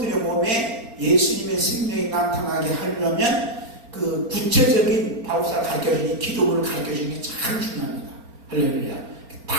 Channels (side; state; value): left; late; 4.4 ms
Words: 몸에 예수님의 생명이 나타나게 하려면 그 구체적인 바울사가 가르쳐주는 기도를 가르쳐주는 게 참 중요합니다. 할렐루야.